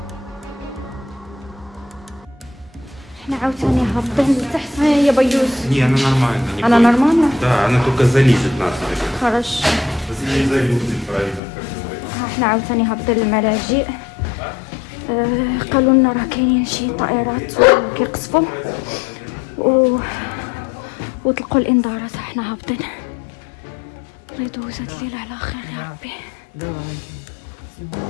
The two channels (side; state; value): right; drops out; at 11.4 s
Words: احنا عاوتاني هابطين لتحت يا بيوز. Не, она нормально. Не Она бойся. нормально? Да, она только залезет нас. Хорошо. Если не залезет, правильно, как говорится. احنا عاوتاني هابطين للملاجئ. قالوا لنا راه كاينين شي طائرات كيقصفوا وطلقوا الانذارات. احنا هابطين. الله يدوز هاد الليله على خير يا ربي.